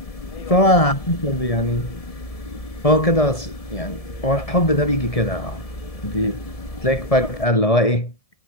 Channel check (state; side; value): late; right; 1.7 ms